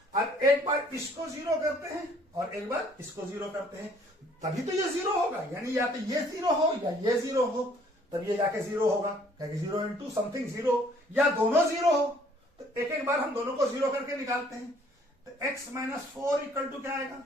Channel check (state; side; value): normal; both; correlation 0.60